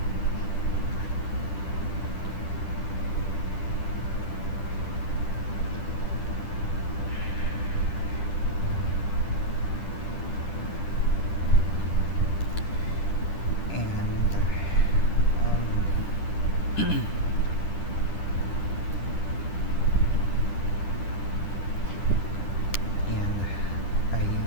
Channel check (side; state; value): right; late; 10 ms